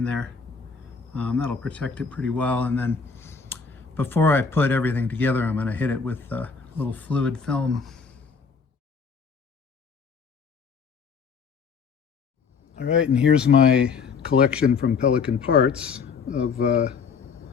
there. That'll protect it pretty well. And then before I put everything together, I'm going to hit it with a little fluid film. All right, and here's my collection from Pelican Parts of, and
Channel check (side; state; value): right; quieter; 5.4 dB